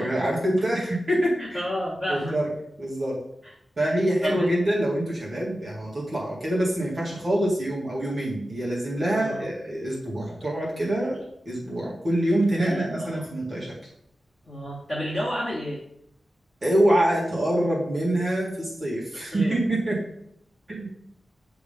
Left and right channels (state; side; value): normal; both; correlation 0.93